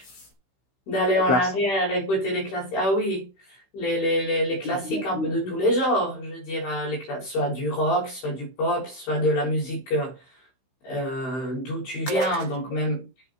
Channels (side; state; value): right; late; 15 ms